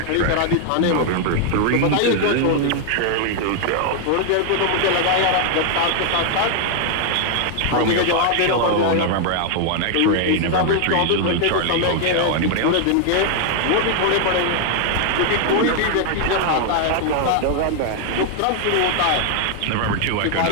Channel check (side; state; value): both; different; correlation 0.00